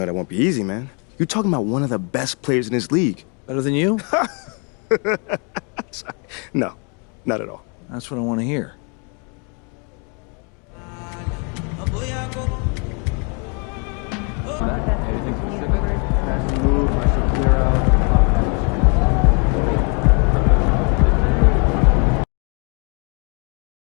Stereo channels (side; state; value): right; quieter; 35.8 dB